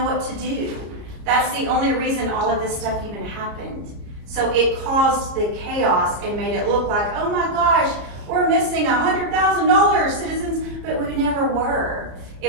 what to do. That's the only reason all of this stuff even happened. So it caused the chaos and made it look like, oh my gosh, we're missing $100,000, citizens, but we never were.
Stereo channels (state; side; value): late; left; 34 ms